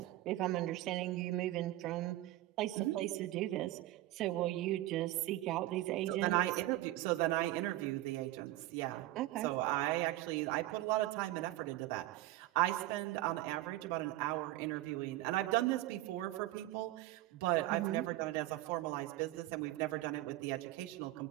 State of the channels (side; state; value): left; quieter; 16.3 dB